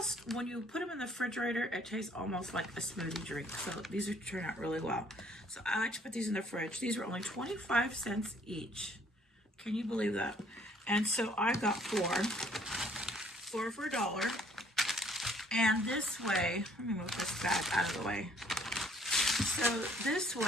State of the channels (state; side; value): normal; both; correlation 0.61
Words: when you put them in the refrigerator, it tastes almost like a smoothie drink. So these are turn out really well. So I like to put these in the fridge. These were only 25 cents each. Can you believe that? And so I got four for $1. And this way, let me move this bag out of the way. So this